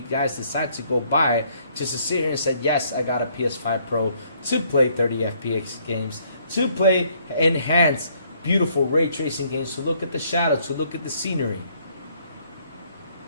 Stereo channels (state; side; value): inverted; both; correlation -0.66